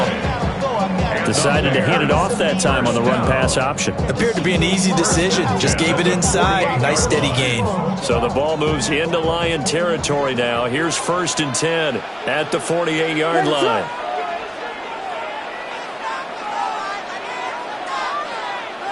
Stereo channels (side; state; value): both; identical; correlation 1.00